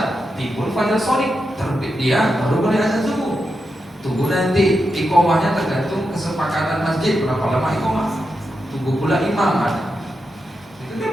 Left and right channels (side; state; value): both; normal; correlation 0.87